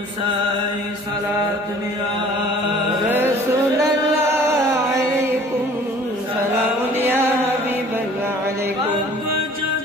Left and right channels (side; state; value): both; normal; correlation 0.50